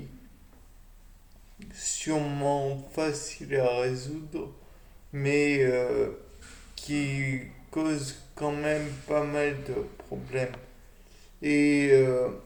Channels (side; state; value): both; identical; correlation 1.00